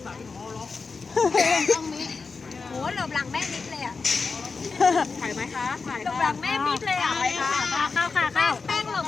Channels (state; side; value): quieter; right; 4.6 dB